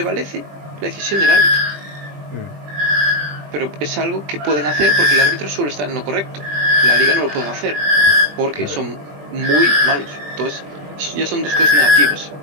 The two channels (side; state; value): left; late; 20 ms